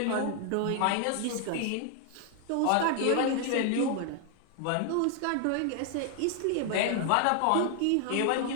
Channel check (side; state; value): both; different; correlation 0.00